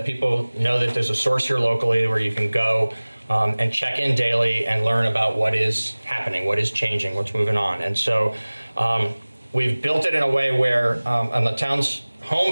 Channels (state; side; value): inverted; both; correlation -1.00